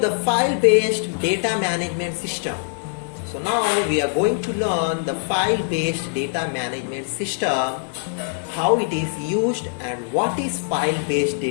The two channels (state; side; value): silent; right; digital silence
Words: the file-based data management system. So now we are going to learn the file-based data management system, how it is used and what is file-based